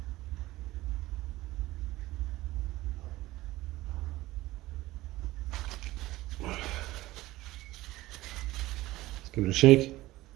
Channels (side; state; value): left; quieter; 17.6 dB